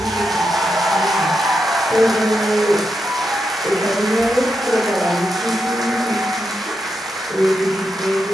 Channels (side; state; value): both; normal; correlation 0.85